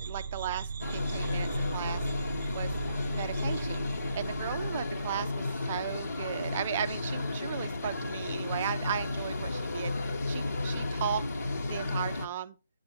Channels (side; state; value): both; inverted; correlation -0.74